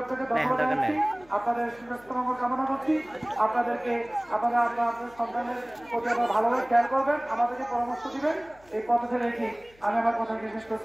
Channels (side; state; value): left; noise; hum, 28 dB below the sound